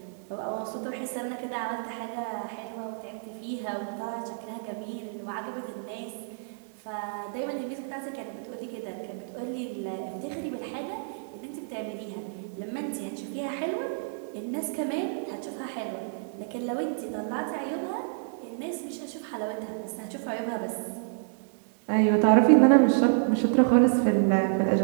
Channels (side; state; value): left; silent; digital silence